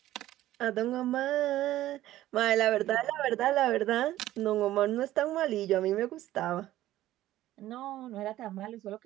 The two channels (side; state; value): left; quieter; 14.5 dB